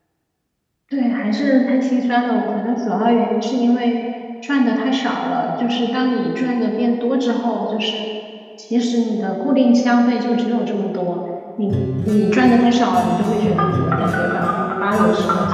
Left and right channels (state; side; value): identical; both; correlation 1.00